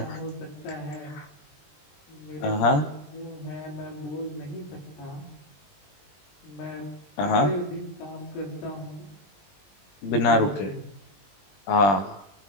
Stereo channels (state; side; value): late; right; 20 ms